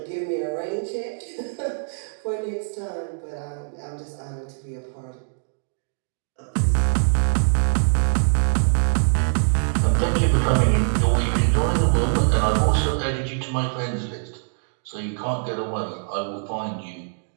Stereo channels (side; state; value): left; silent; digital silence